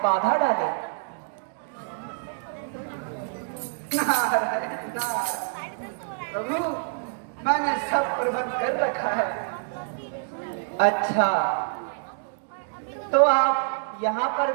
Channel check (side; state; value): left; silent; digital silence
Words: बाधा डाले? नारायण नारायण। प्रभु मैंने सब प्रबंध कर रखा है। अच्छा, तो आप यहाँ पर